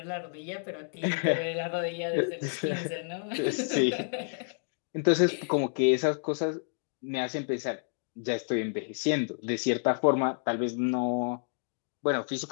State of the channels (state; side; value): silent; right; digital silence